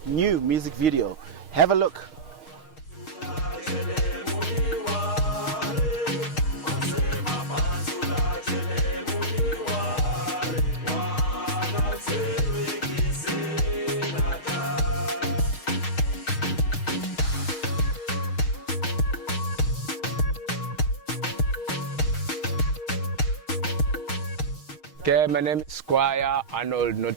new music video. Have a look. Okay, my name is Squire Arnold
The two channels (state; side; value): late; right; 6.4 ms